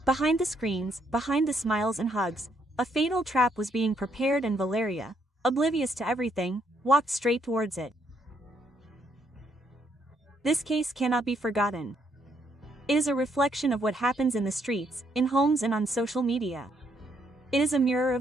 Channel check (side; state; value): both; normal; correlation 0.72